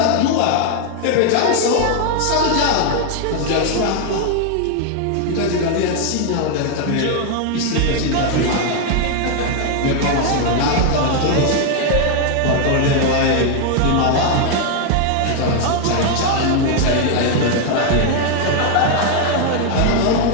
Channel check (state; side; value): different; both; correlation 0.00